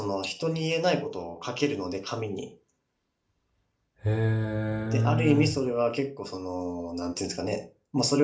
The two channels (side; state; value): both; identical; correlation 1.00